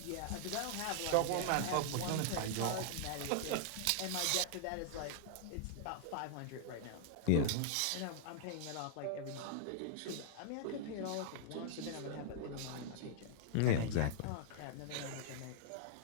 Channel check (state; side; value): different; both; correlation -0.01